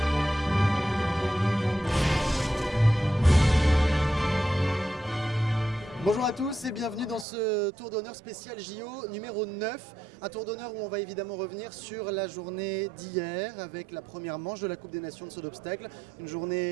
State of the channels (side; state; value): left; drops out; at 7.2 s